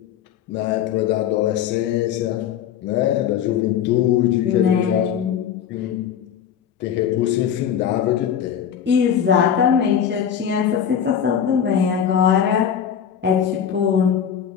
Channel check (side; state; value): right; quieter; 8.7 dB